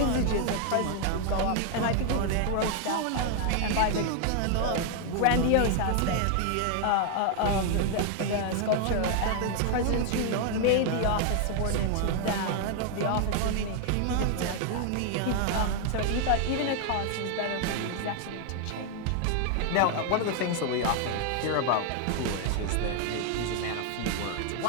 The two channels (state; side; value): different; both; correlation 0.00